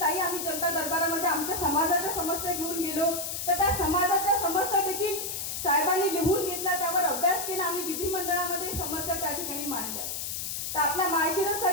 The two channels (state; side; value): noise; left; hiss, 4 dB below the sound